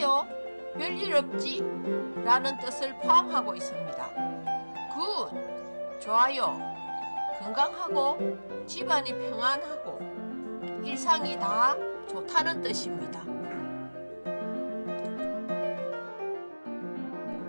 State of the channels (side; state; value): both; inverted; correlation -1.00